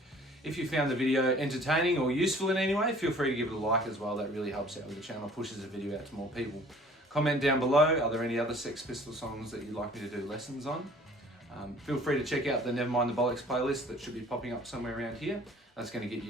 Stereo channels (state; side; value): normal; both; correlation 0.52